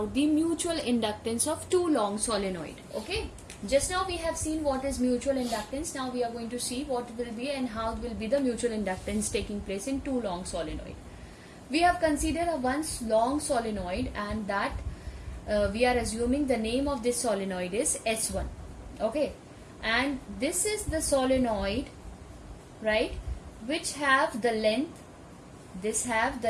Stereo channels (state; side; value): identical; both; correlation 1.00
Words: the mutual inductance of two long solenoid. Okay, just now we have seen what is mutual inductance. Now we are going to see what will be and how will be the mutual inductance taking place in two long solenoid. We have considered a one long solenoid, and that we are assuming the name of this solenoid is S1. Okay, and this is the solenoid, right, which have the length,